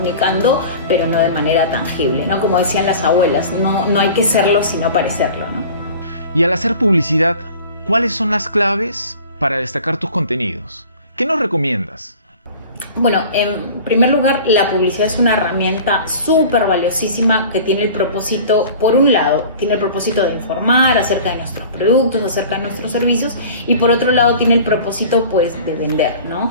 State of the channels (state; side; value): inverted; both; correlation -0.42